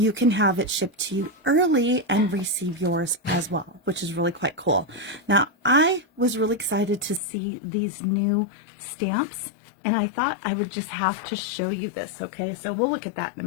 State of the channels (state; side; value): drops out; right; at 7.2 s